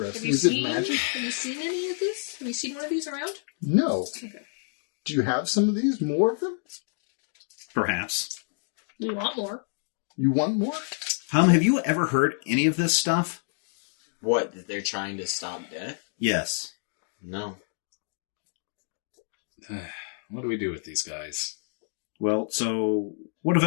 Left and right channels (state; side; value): silent; right; digital silence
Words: Is it magic? Have you seen any of this? Have you seen one of these around? No. Okay. Do you have some of these? More of them? Perhaps. We want more. You want more? Have you ever heard any of this stuff? What, that they're trying to stop death? Yes. No. What do we do with these guys? Well, so what of